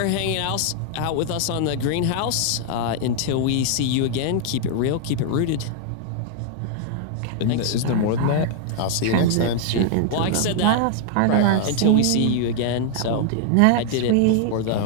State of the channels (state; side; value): different; both; correlation -0.01